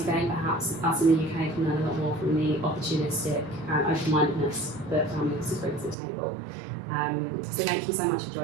again, perhaps us in the UK can learn a lot more from the opportunistic and open-mindedness that family offices bring to the table. So thank you so much for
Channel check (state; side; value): drops out; left; at 6.0 s